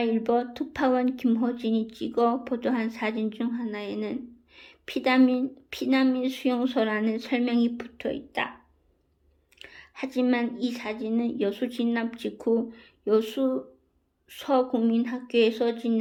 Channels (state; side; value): identical; both; correlation 1.00